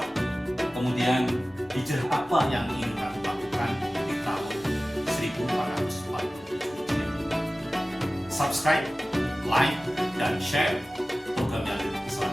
kemudian hijrah apa yang ingin kamu lakukan di tahun 1447 Hijriah. Subscribe, like, dan share program yang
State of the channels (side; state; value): both; normal; correlation 0.97